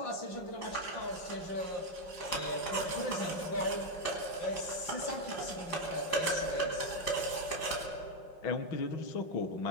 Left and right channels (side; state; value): right; late; 5.6 ms